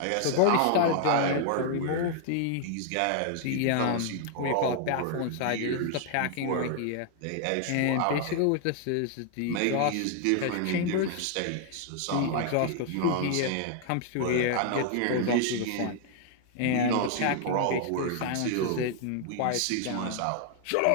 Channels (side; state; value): both; different; correlation 0.00